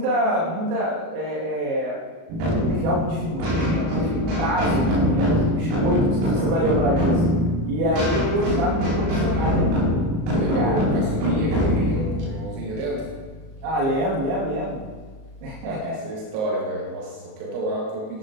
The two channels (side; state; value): left; late; 37 ms